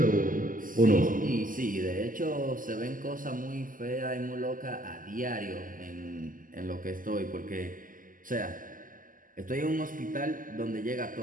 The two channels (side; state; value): left; late; 0.39 ms